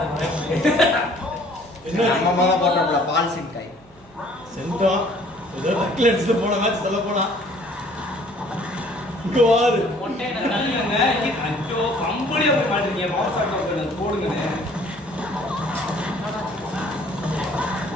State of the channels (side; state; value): right; noise; hum, 29 dB below the sound